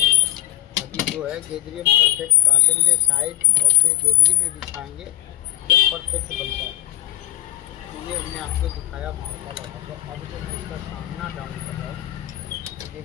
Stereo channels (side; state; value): right; quieter; 15.4 dB